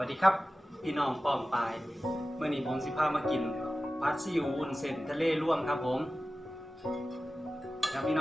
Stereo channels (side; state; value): both; normal; correlation 0.95